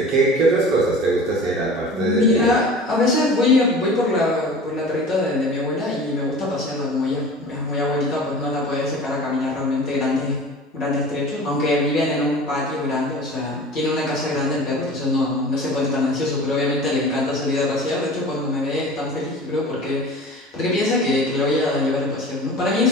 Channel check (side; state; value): both; normal; correlation 0.39